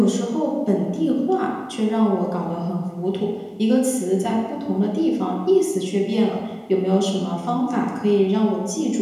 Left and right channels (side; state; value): both; identical; correlation 1.00